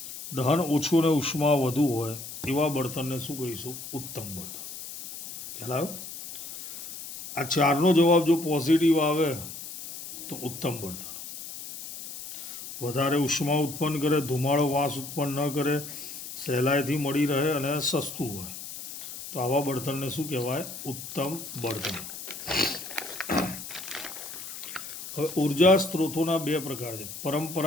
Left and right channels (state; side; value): noise; left; hiss, 10 dB below the sound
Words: દહન ઓછું અને ઉષ્મા વધુ હોય એવા બળતણને શું કહીશું? ઉત્તમ બળતણ. ખ્યાલ આવ્યો? આ 4નો જવાબ જો પોઝિટિવ આવે તો ઉત્તમ બળતણ. વધારે ઉષ્મા ઉત્પન્ન કરે, ધુમાડો વાસ ઉત્પન્ન ન કરે, સહેલાઈથી મળી રહે અને સસ્તું હોય, તો આવા બળતણને શું કહેવાય? ઉત્તમ બળતણ. હવે ઉર્જા સ્ત્રોતોના 2 પ્રકાર છે,